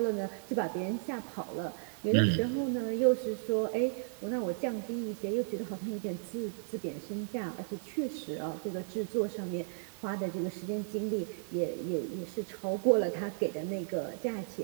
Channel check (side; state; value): left; silent; digital silence